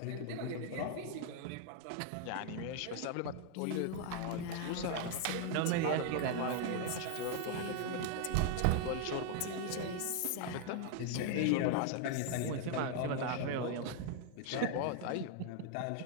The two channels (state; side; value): different; both; correlation 0.00